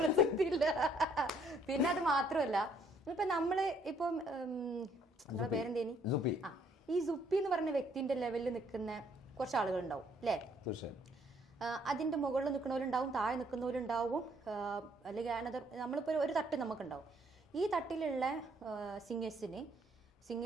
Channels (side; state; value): both; normal; correlation 0.65